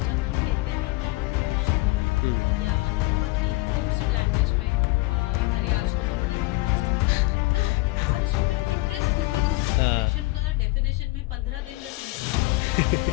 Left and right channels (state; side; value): quieter; right; 22.6 dB